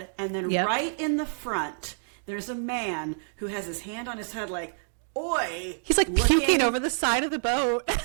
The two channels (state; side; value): silent; left; digital silence